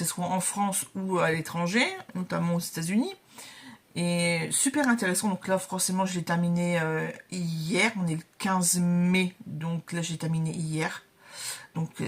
soit en France ou à l'étranger, notamment aux États-Unis. Et super intéressant, donc là forcément je l'ai terminé hier, on est le 15 mai, donc là j'ai terminé hier, donc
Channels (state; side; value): identical; both; correlation 1.00